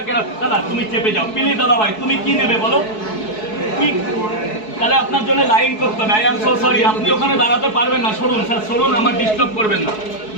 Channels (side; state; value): right; late; 4.7 ms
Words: দাদা তুমি চেপে যাও প্লিজ। দাদা ভাই তুমি কি নেবে বলো? কি তাহলে আপনার জন্য লাইন করতে হবে। আই এম সো সরি, আপনি ওখানে দাঁড়াতে পারবেন না। সরুন স্যার, সরুন, আমার ডিস্টার্ব করবেন না।